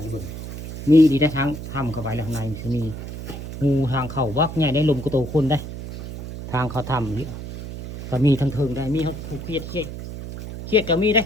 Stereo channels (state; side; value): noise; right; hum, 9 dB below the sound